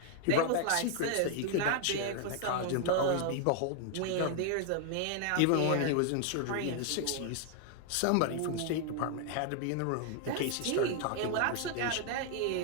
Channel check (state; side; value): different; both; correlation 0.00